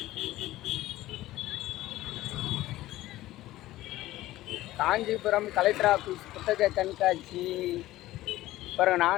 காஞ்சிபுரம் கலெக்டர் ஆஃபீஸ் புத்தக கண்காட்சி. அப்புறம்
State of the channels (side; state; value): right; quieter; 16.1 dB